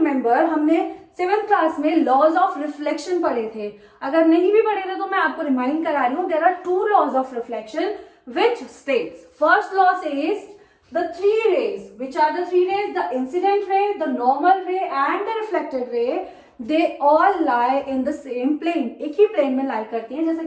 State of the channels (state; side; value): identical; both; correlation 1.00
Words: हमने 7th क्लास में लॉज ऑफ रिफ्लेक्शन पढ़े थे। अगर नहीं भी पढ़े थे तो मैं आपको रिमाइंड करा रही हूँ। There are 2 laws of reflection which states, first law says the 3 rays, which are the 3 rays, the incident ray, the normal ray and the reflected ray, they all lie in the same plane, एक ही plane में lie करती हैं, जैसा